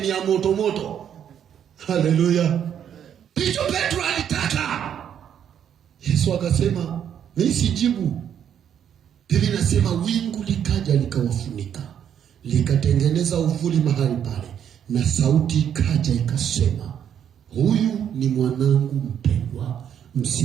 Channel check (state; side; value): quieter; left; 9.0 dB